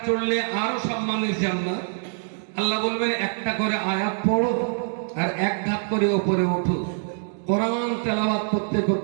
চড়লে আরো সম্মানের জান্নাত। আল্লাহ বলবেন একটা করে আয়াত পড়ো আর এক ধাপ করে ওপরে ওঠো। কোরআন তেলাওয়াত করতে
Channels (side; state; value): left; silent; 62 dB below the other